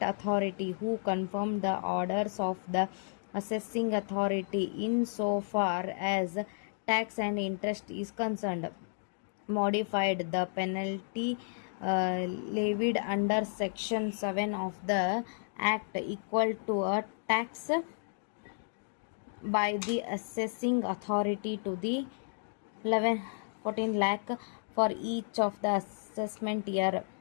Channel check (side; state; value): right; silent; digital silence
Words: authority, who confirmed the orders of the assessing authority insofar as tax and interest is concerned, modified the penalty levied under Section 7 of the Act equal to a tax by the assessing authority to the 14 lakh for each of the assessment year.